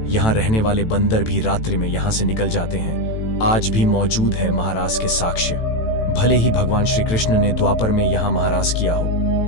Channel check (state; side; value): late; right; 18 ms